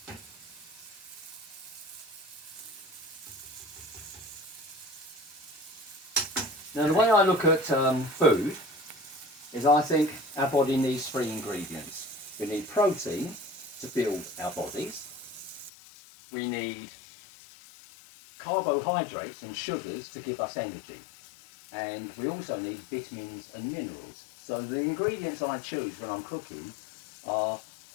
Now, the way I look at food is I think our body needs 3 ingredients. We need protein to build our bodies. We need carbohydrates and sugars to give us energy. And we also need vitamins and minerals. So the ingredients I choose when I'm cooking are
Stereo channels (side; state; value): right; drops out; at 15.7 s